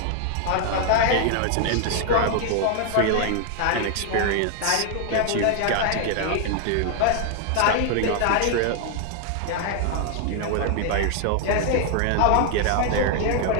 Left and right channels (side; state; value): both; different; correlation 0.00